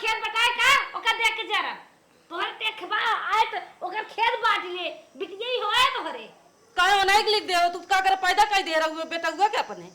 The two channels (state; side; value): identical; both; correlation 1.00